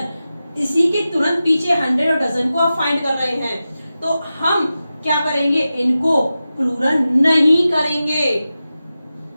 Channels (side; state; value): both; inverted; correlation -0.93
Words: इसी के तुरंत पीछे 100 और डजन को आप फाइंड कर रहे हैं, तो हम क्या करेंगे, इनको प्लूरल नहीं करेंगे।